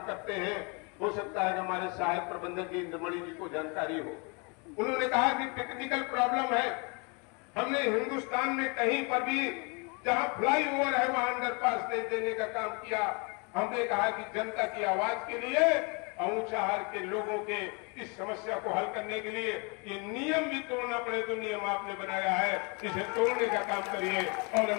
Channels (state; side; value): quieter; right; 32.2 dB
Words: करते हैं। हो सकता है कि हमारे सहायक प्रबंधक जी इंद्रमणि जी को जानकारी हो। उन्होंने कहा कि टेक्निकल प्रॉब्लम है। हमने हिंदुस्तान में कहीं पर भी जहां फ्लाईओवर है वहां अंडरपास नहीं देने का काम किया। हमने कहा कि जनता की आवाज के लिए ऊंचाहार के लोगों के इस समस्या को हल करने के लिए ये नियम भी तोड़ना पड़े तो नियम आपने बनाया है, इसे तोड़ने का काम करिए और